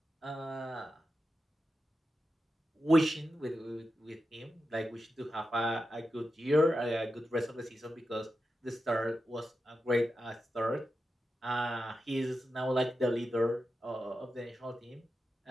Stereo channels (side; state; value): both; normal; correlation 0.90